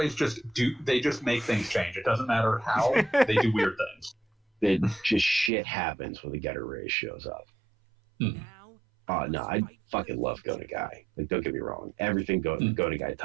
just make things change. It doesn't matter how, they do weird things. It just shit happens when the Getter Ray shows up. Oh no, I fucking love Go Nagai. Like, don't get me wrong, everything Go Nagai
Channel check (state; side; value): drops out; left; at 5.5 s